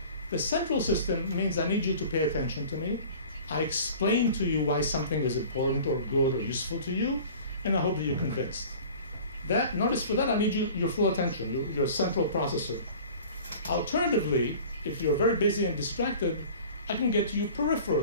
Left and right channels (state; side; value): inverted; both; correlation -0.43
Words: The central system means I need you to pay attention to me. I explain to you why something is important or good or useful to you, and I hope that you're convinced. Notice for that I need your full attention, your central processor. Alternatively, if you're very busy and distracted, I can get to you